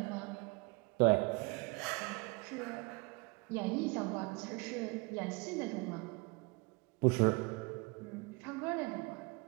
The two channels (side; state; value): left; quieter; 28.0 dB